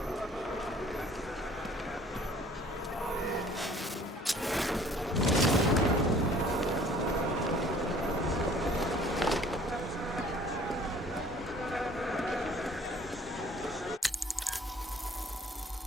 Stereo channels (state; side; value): normal; both; correlation 0.54